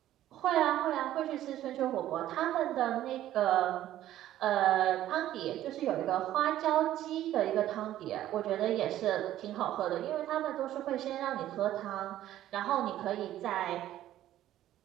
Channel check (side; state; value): left; quieter; 13.1 dB